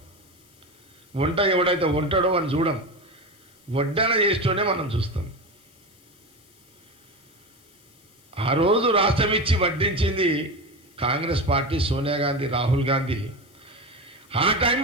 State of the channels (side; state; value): left; noise; hiss, 29 dB below the sound